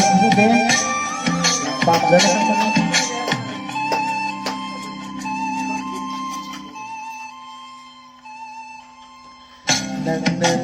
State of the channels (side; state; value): both; identical; correlation 1.00